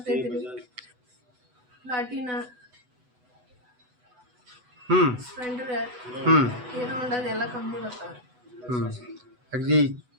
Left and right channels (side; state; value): left; late; 8.1 ms